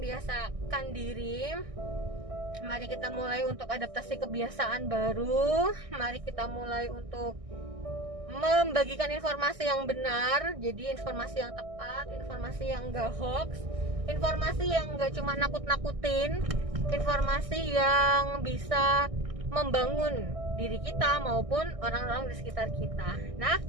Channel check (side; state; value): left; late; 1.6 ms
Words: diri. Mari kita mulai untuk adaptasi kebiasaan baru. Mari kita mulai untuk membagikan informasi yang benar. Jadi informasi yang tepat, informasi yang gak hoax, informasi yang gak cuma nakut-nakutin, informasi yang bisa membangun diri kita maupun orang-orang di sekitar kita. Nah,